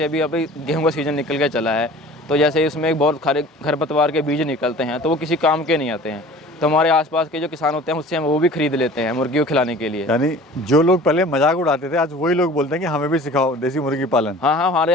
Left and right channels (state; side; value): normal; both; correlation 0.44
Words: अभी गेहूँ का सीज़न निकल के चला है, तो जैसे इसमें एक बहुत खारे खरपतवार के बीज निकलते हैं, तो वो किसी काम के नहीं आते हैं, तो हमारे आसपास के जो किसान होते हैं उससे हम वो भी खरीद लेते हैं मुर्गी को खिलाने के लिए। यानी जो लोग पहले मजाक उड़ाते थे, आज वही लोग बोलते हैं कि हमें भी सिखाओ देसी मुर्गी पालन। हाँ हाँ, हमारे